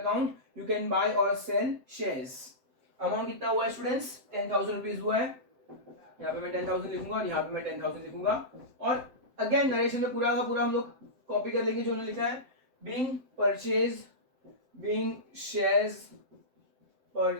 you can buy और सेल शेयर्स। अमाउंट कितना हुआ है स्टूडेंट्स? 10,000 रुपीज हुआ है। यहाँ पे मैं 10,000 लिखूंगा और यहाँ पे मैं 10,000 लिखूंगा। और अगेन नरेशन में पूरा का पूरा हम लोग कॉपी कर लेंगे जो उन्होंने लिखा है, being purchase, being shares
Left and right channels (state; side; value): late; left; 7.7 ms